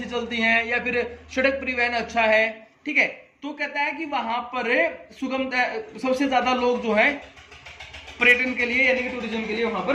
चलती हैं, या फिर सड़क परिवहन अच्छा है। ठीक है, तो कहता है कि वहां पर सुगमता, सबसे ज्यादा लोग जो है पर्यटन के लिए यानी कि टूरिज्म के लिए वहां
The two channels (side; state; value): both; identical; correlation 1.00